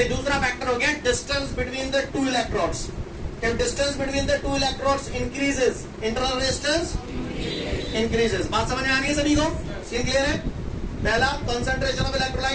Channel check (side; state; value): both; identical; correlation 1.00